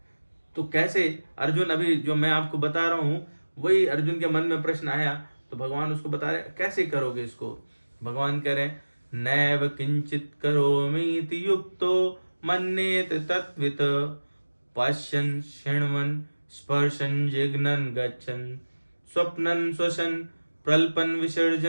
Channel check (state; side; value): inverted; both; correlation -1.00